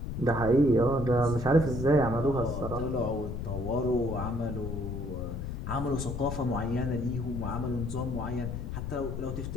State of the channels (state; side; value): noise; left; rumble, 5 dB below the sound